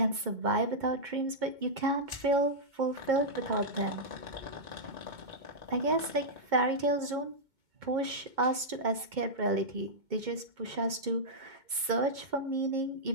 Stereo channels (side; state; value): left; late; 2.2 ms